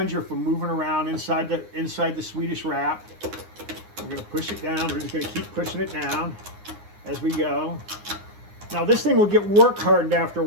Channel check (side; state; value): left; late; 9.7 ms